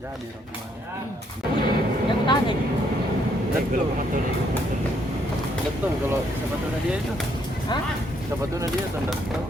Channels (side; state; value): both; normal; correlation 0.71